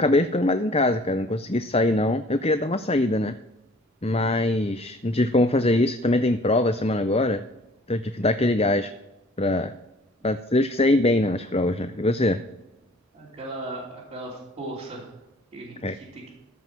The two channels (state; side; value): normal; both; correlation 0.53